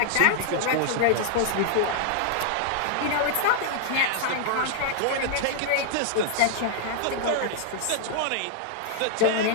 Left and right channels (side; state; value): both; different; correlation -0.01